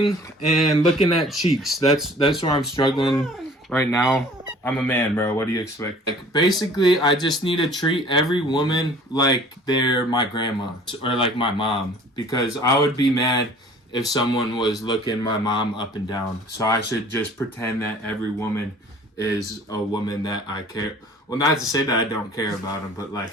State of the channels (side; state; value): both; normal; correlation 0.50